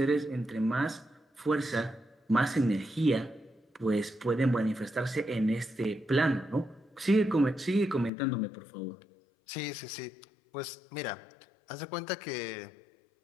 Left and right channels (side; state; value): right; drops out; at 8.1 s